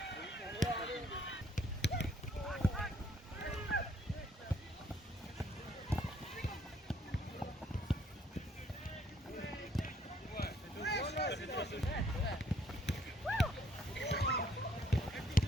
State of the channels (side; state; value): both; normal; correlation 0.65